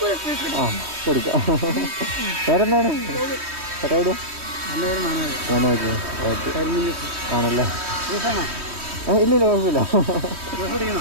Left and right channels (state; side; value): late; left; 3.1 ms